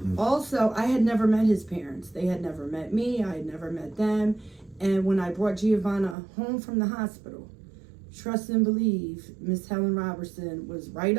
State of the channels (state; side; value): drops out; left; at 6.2 s